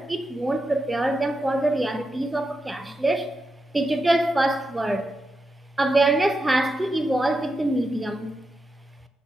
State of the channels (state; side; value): normal; both; correlation 0.87